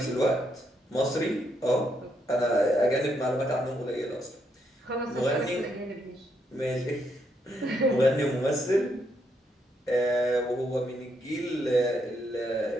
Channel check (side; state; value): both; normal; correlation 0.76